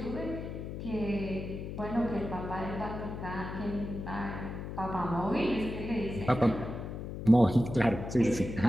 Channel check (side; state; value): left; noise; hum, 7 dB below the sound